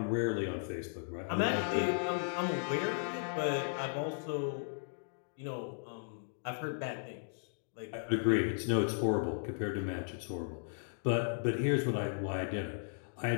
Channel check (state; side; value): silent; right; digital silence